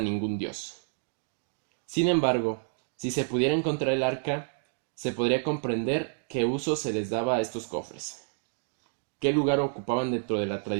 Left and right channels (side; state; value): left; silent; digital silence